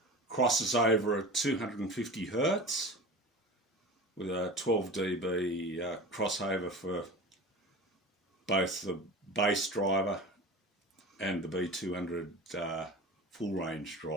Crosses over at 250 Hertz with a 12 dB crossover for both the bass driver and the B200 full range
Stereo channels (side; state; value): both; normal; correlation 0.33